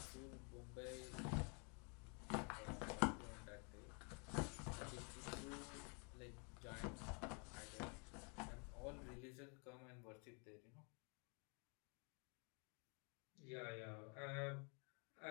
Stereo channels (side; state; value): right; quieter; 36.2 dB